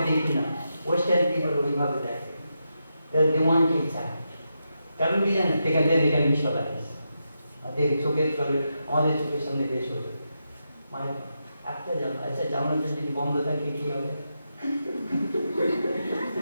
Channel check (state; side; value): inverted; both; correlation -0.86